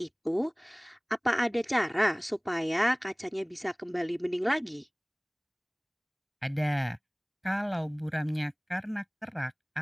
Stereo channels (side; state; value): both; identical; correlation 1.00